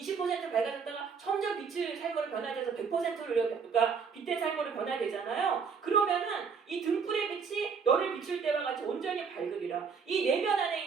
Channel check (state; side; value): quieter; left; 5.9 dB